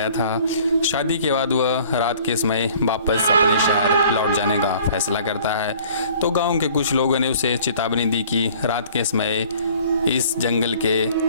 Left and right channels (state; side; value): inverted; both; correlation -0.52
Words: था। शादी के बाद वह रात के समय वापस अपने शहर लौट जाने का फैसला करता है तो गांव के कुछ लोगों ने उसे चेतावनी दी कि रात के समय इस जंगल के